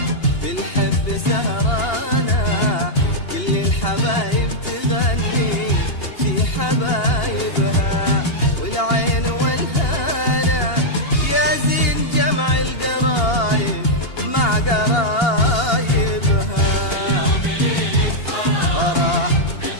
بالحب سهرانة كل الحبايب تغني في حبايبها والعين والهنا يا زين جمع القرايب مع قرايبها فرح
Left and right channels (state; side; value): late; right; 2.8 ms